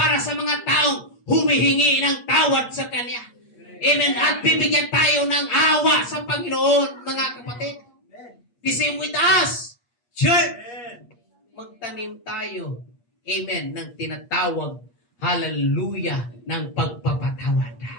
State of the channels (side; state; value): right; late; 8.4 ms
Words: sa mga taong humihingi ng tawad sa Kanya. Amen. At bibigyan tayo ng awa sa Panginoon, mga kapatid. The same with us. Church, magtanim tayo, amen, ng tinatawag, hallelujah, ng pagpapatawad.